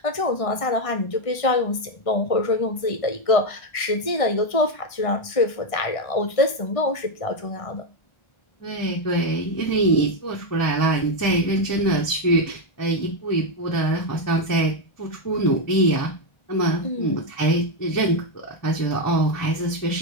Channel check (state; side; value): late; right; 1.6 ms